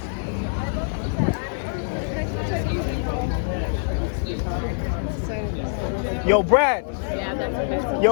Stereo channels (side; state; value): right; silent; digital silence